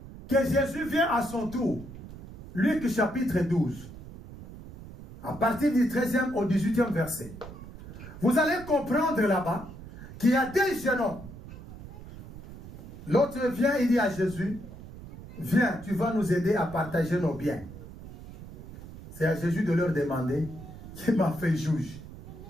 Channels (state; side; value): noise; right; rumble, 15 dB below the sound